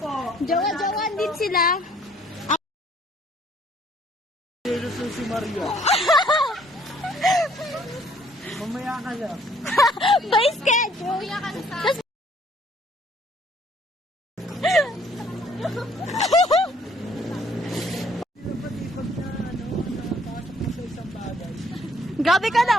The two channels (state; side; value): normal; both; correlation 0.62